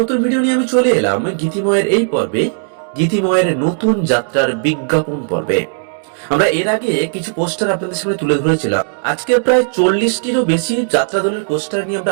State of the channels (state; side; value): silent; left; digital silence